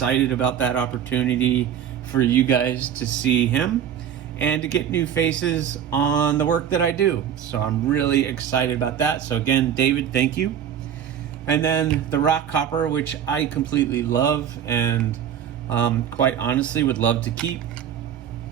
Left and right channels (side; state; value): left; quieter; 9.1 dB